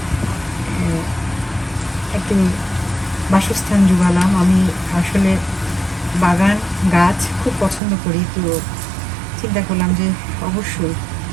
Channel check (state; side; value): drops out; left; at 7.8 s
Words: একটু বাসস্থান জোগালাম। আমি আসলে বাগান গাছ খুব পছন্দ করি, তো চিন্তা করলাম যে অবশ্যই